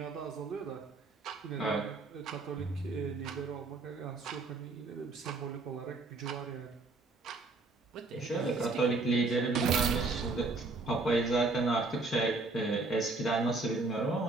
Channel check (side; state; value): left; quieter; 3.5 dB